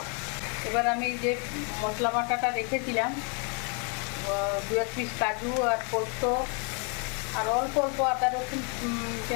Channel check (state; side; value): quieter; right; 37.7 dB